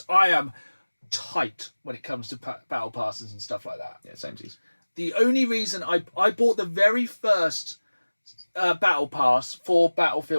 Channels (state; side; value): inverted; both; correlation -1.00